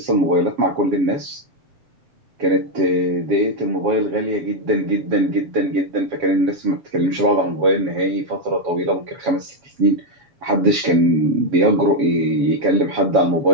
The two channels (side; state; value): left; late; 7.2 ms